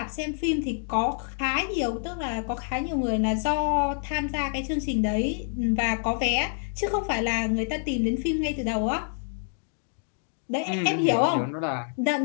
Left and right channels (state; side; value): silent; right; 60 dB below the other